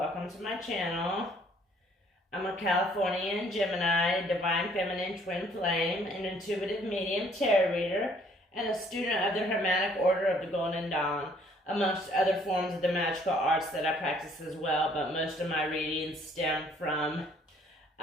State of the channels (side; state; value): both; normal; correlation 0.61